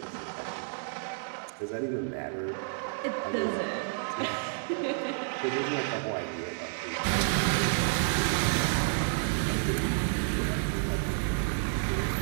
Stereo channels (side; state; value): left; silent; digital silence